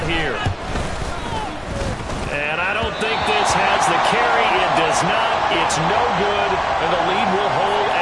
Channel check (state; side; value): identical; both; correlation 1.00